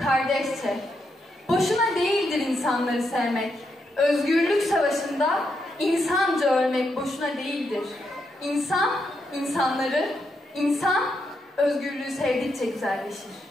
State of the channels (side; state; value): both; normal; correlation 0.81